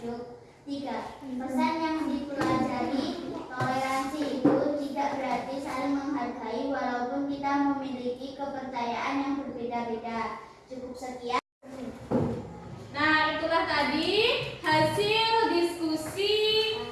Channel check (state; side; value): identical; both; correlation 1.00